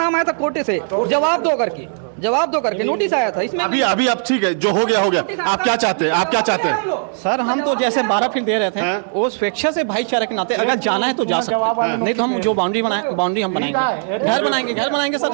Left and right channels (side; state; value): left; silent; digital silence